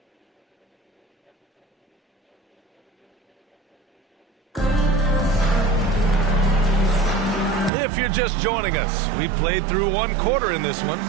If you're just joining us, we played through 1 quarter in this one.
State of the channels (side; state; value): left; drops out; at 7.7 s